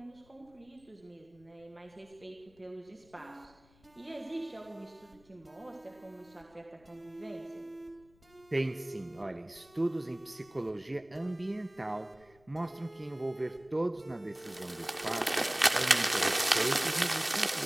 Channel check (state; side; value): noise; left; rumble, 29 dB below the sound